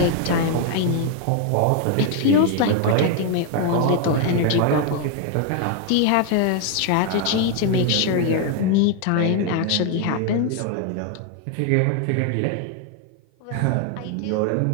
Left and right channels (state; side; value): different; both; correlation 0.01